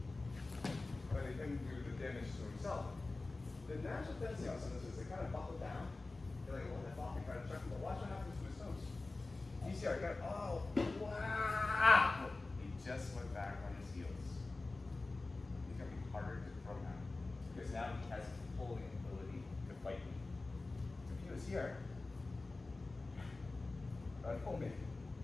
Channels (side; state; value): right; quieter; 3.3 dB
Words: letting him do the damage to himself. The natural tendency on some of this is they kind of buckle down. They're like, oh, that ball, kind of check him, but watch what happens to his toes. You see, I got, oh, wow! He just went back on his heels. It's going to be harder to throw now. Because now he has pulling ability to fight me. If he was here, I'd pull me.